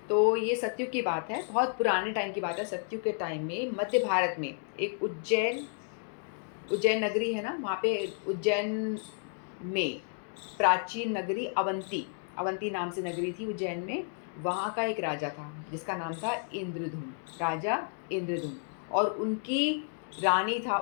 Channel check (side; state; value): right; silent; 57 dB below the other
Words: तो ये सतयुग की बात है, बहुत पुराने टाइम की बात है। सतयुग के टाइम में मध्य भारत में एक उज्जैन नगरी है ना, वहाँ पे उज्जैन में प्राचीन नगरी अवंती नाम से नगरी थी उज्जैन में। वहाँ का एक राजा था जिसका नाम था इंद्रधुम, राजा इंद्रधुम, और उनकी